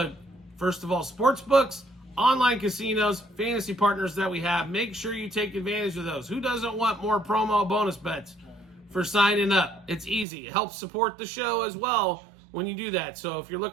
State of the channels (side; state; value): left; drops out; at 10.2 s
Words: first of all, sports books, online casinos, fantasy partners that we have. Make sure you take advantage of those. Who doesn't want more promo bonus bets for signing up? It's easy. It helps support the show as well when you do that. So if you're